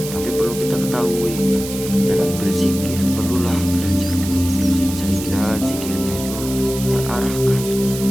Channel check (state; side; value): noise; right; hiss, 10 dB below the sound